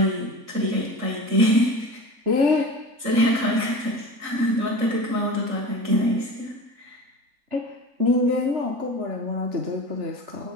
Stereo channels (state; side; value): late; left; 3.7 ms